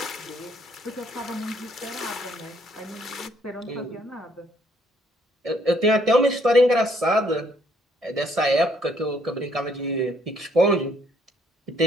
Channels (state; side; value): normal; both; correlation 0.67